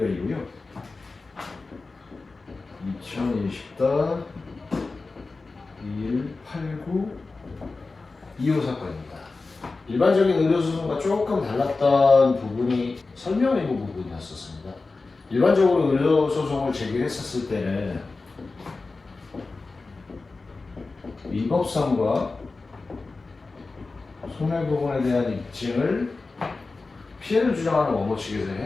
2020다 2189 2호 사건입니다. 일반적인 의료소송과 조금 달랐던 부분이 설명 의무 부분이었었습니다. 일반적으로 의료소송을 제기했었을 때는 위법성과 손해부분에 대한 입증을 피해를 주장하는 원고 측에서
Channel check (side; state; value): right; quieter; 3.8 dB